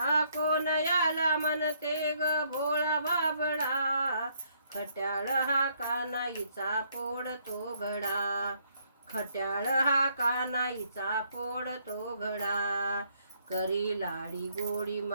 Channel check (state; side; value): inverted; both; correlation -0.70